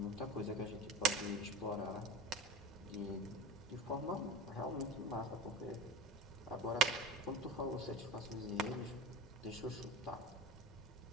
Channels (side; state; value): both; normal; correlation 0.32